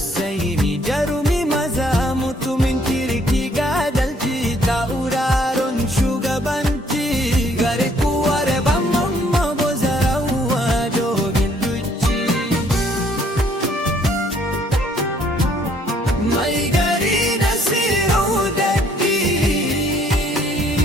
jarumi maza mutumin kirki ga adalci, tauraron shugabanci gari kuwar ban mamma. Bozarawa dogon duci, mai gari Nasiru Daddi,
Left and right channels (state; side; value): normal; both; correlation 0.63